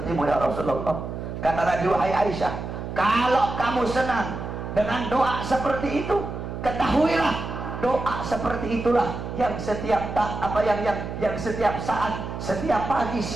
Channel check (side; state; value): right; noise; hum, 7 dB below the sound